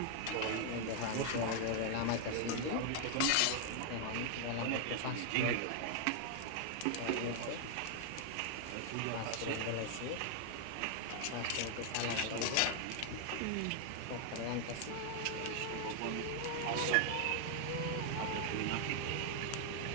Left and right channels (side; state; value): both; different; correlation 0.00